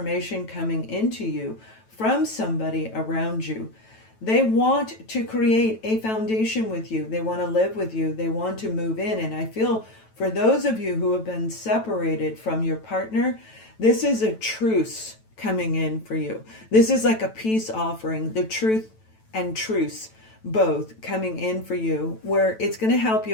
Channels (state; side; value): late; right; 9.1 ms